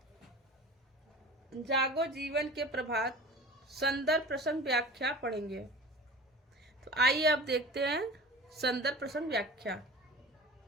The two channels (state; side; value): normal; both; correlation 0.38